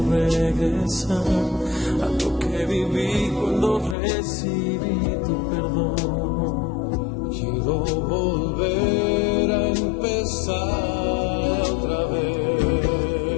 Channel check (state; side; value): drops out; right; at 4.0 s